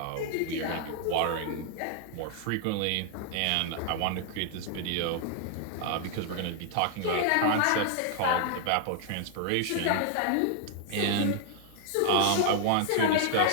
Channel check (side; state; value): both; different; correlation -0.01